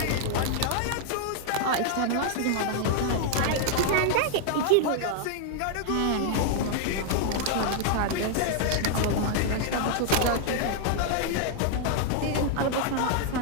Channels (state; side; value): different; both; correlation 0.00